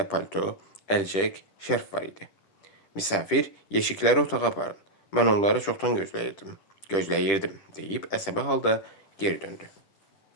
palto, əlcək, şərf var idi. Misafir, yeşikləri otağa aparın. Mən onları çoxdan gözləyirdim, deyib əsəbi halda geri döndü.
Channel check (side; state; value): right; late; 10 ms